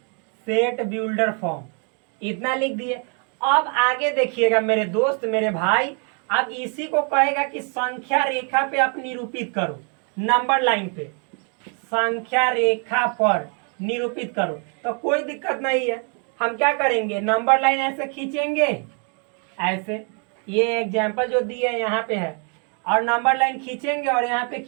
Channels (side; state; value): left; quieter; 39.8 dB